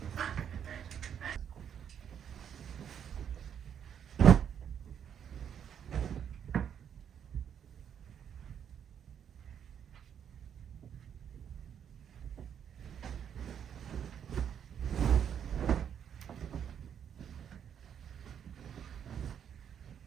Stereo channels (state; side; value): quieter; left; 8.5 dB